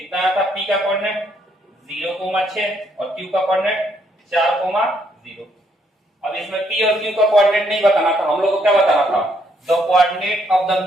आया था P का कोऑर्डिनेट 0,6 और Q का कोऑर्डिनेट 4,0। अब इसमें P और Q का कोऑर्डिनेट नहीं बताना था, हम लोग को क्या बताना था, the coordinate of the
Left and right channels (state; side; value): normal; both; correlation 0.71